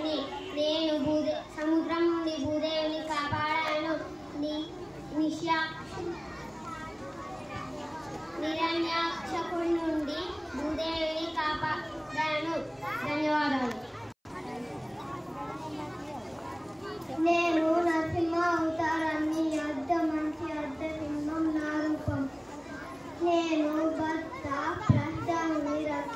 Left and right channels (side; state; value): both; identical; correlation 1.00